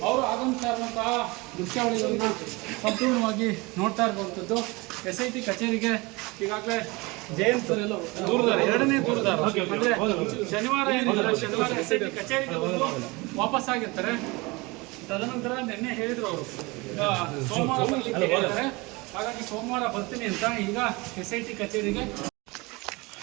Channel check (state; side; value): quieter; left; 24.7 dB